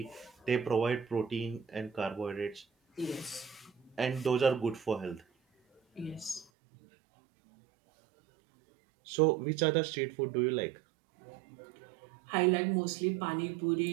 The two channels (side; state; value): left; drops out; at 6.5 s